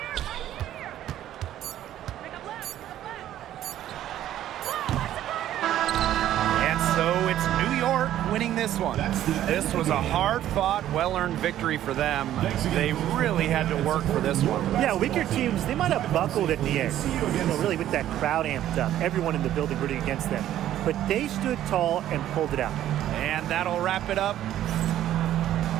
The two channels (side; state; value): left; quieter; 12.3 dB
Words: Winning this one. This was a hard-fought, well-earned victory for them. They really had to work for this one. Yeah, weaker teams, they might have buckled at the end. Really with that crowd amped up. Everyone in the building rooting against them. But they stood tall and pulled it out. And that'll wrap it up